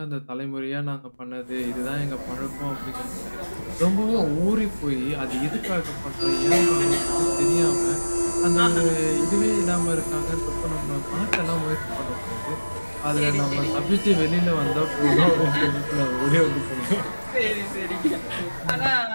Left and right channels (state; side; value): inverted; both; correlation -1.00